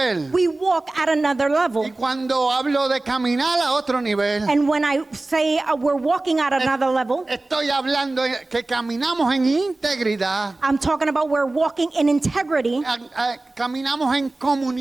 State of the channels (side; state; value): left; quieter; 3.0 dB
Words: we walk at another level. Y cuando hablo de caminar a otro nivel, And when I say we're walking at another level, estoy hablando que caminamos en integridad, I'm talking about we're walking in integrity, caminamos en